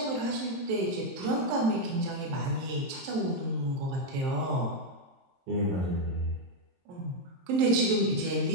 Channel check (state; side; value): late; left; 22 ms